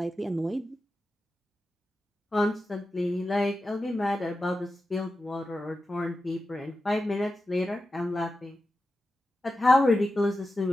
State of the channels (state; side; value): normal; both; correlation 0.92